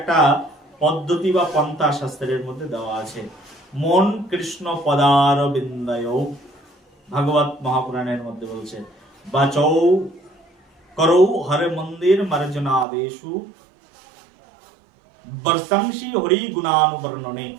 পদ্ধতি বা পন্থা শাস্ত্রের মধ্যে দেওয়া আছে। মন কৃষ্ণ পদার বিন্দয়, ভাগবত মহাপুরাণের মধ্যে বলছে, বাচৌ করৌ হরে মন্দির মার্জনাদেশু বর্ষংশী হরি গুণানুবর্ণনে।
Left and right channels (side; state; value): left; drops out; at 12.9 s